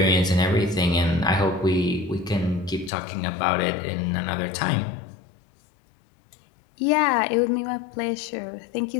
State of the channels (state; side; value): drops out; right; at 2.9 s